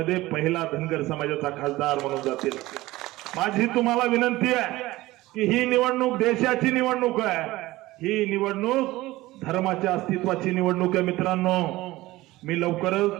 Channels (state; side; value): quieter; left; 18.2 dB